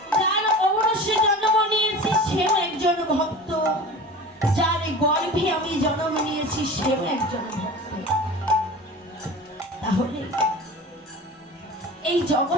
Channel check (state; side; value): normal; both; correlation 0.36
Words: যার ঔরসে জন্ম নিয়েছি সেও একজন ভক্ত, যার গর্ভে আমি জন্ম নিয়েছি সেও একজন ভক্ত। তাহলে এই